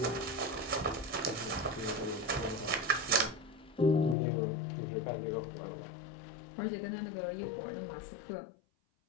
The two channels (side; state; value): right; drops out; at 4.2 s